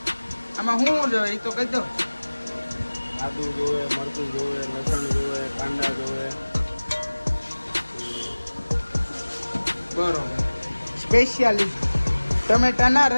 આમાં શું જોઈએ એ તો કહી દો. આદુ જોવે, મરચું જોવે, લસણ જોવે, કાંદા જોવે. બરોબર. સ્પેશિયાલિસ્ટ ટમેટાના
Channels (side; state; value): both; inverted; correlation -1.00